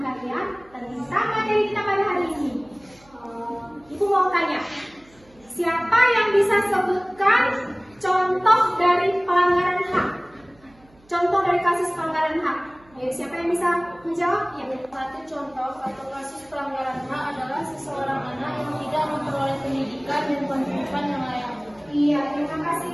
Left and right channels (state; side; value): noise; right; hum, 29 dB below the sound